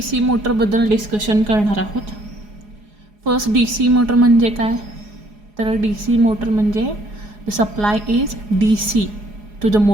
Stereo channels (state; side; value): late; left; 4.8 ms